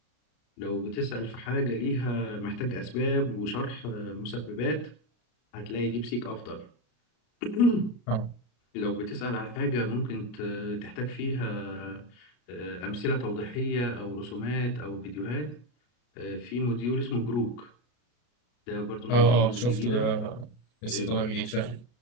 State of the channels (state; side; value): late; right; 33 ms